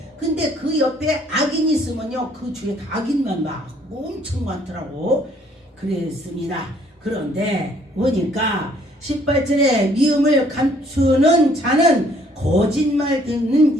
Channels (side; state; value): both; normal; correlation 0.62